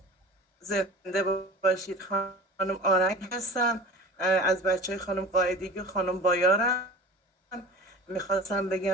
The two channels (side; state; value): both; normal; correlation 0.38